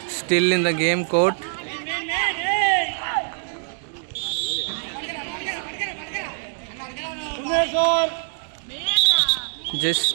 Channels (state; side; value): silent; left; digital silence